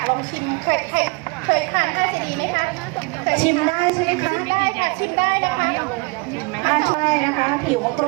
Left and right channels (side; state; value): left; quieter; 27.9 dB